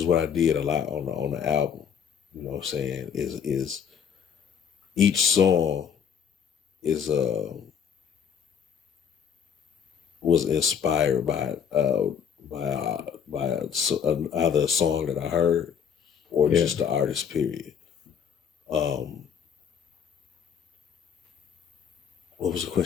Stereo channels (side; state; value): right; quieter; 7.5 dB